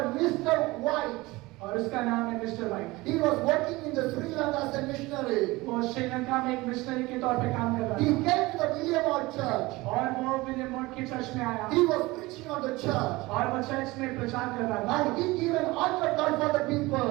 Mr. White. और उसका नाम है mister white. He was working in the Sri Lanka as a missionary. वो श्रीलंका में एक मिशनरी के तौर पे काम कर रहा He came to the William Ward church. था और वो विलियम वॉट के चर्च में आया He was preaching on the church. और वो चर्च में प्रचार कर रहा था And he gave an altar call for the people.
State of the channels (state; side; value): quieter; left; 21.2 dB